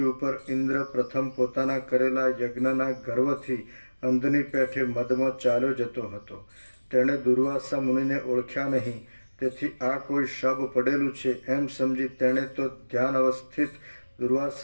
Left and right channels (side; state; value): both; inverted; correlation -1.00